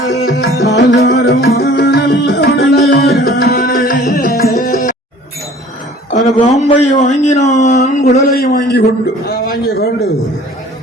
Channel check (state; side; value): normal; both; correlation 0.49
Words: அந்த பாம்பை வாங்கினான், குடலை வாங்கிக் கொண்டு